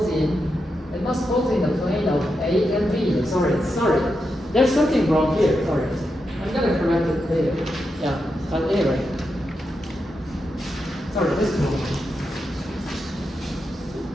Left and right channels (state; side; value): normal; both; correlation 0.86